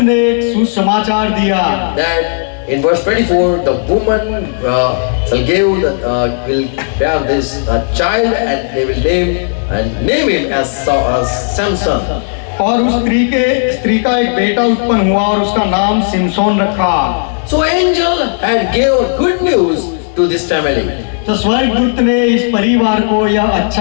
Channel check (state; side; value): silent; right; digital silence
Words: ने एक सुसमाचार दिया that in verse 24 the woman shall give will bear this child and they will name him as Samson. और उस स्त्री का एक बेटा उत्पन्न हुआ और उसका नाम सिमसोन रखा। So angel had gave good news to this family. तो स्वर्गदूत ने इस परिवार को यह